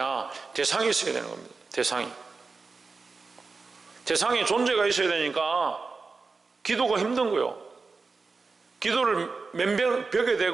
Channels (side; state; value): left; quieter; 4.3 dB